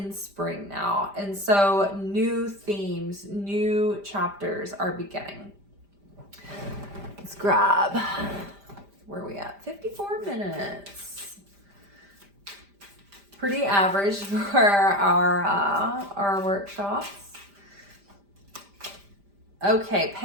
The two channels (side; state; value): left; late; 5.0 ms